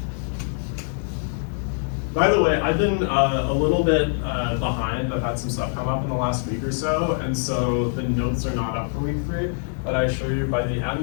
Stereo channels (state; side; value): silent; right; 63 dB below the other